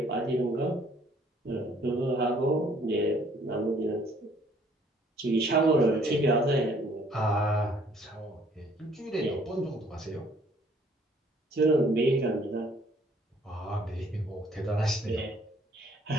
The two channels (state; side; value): normal; both; correlation 0.61